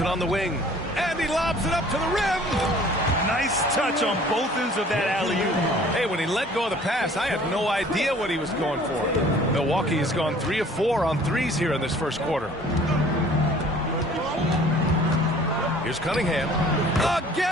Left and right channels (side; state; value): both; normal; correlation 0.52